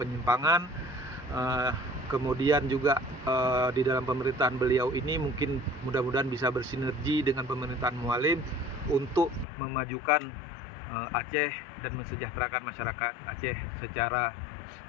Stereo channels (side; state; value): right; drops out; at 9.5 s